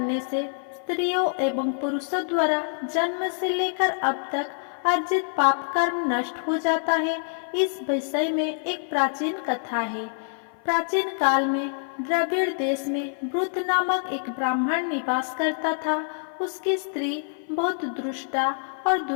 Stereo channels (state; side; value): silent; right; 55 dB below the other